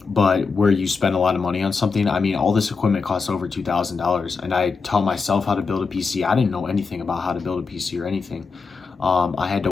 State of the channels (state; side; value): quieter; right; 4.8 dB